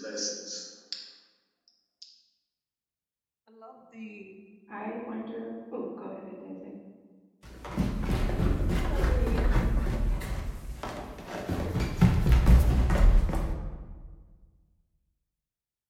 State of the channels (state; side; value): identical; both; correlation 1.00